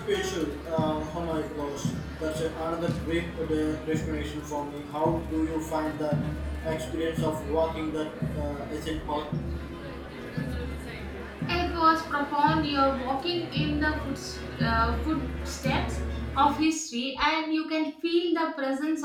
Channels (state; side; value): identical; both; correlation 1.00